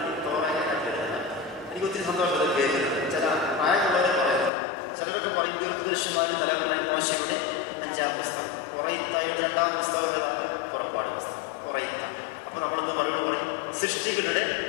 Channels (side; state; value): right; drops out; at 4.5 s